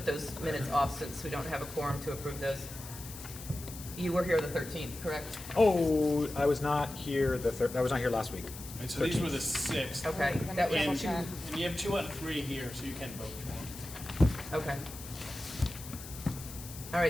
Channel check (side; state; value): left; noise; hiss, 13 dB below the sound